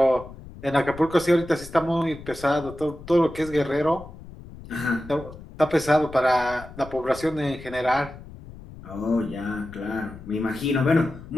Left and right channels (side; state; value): left; noise; rumble, 16 dB below the sound